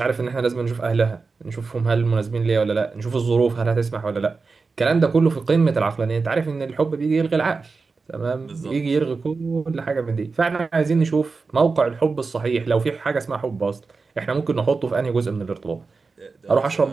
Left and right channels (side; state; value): left; quieter; 4.3 dB